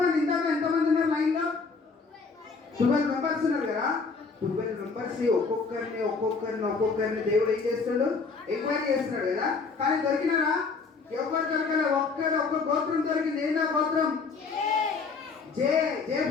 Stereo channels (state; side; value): quieter; right; 4.6 dB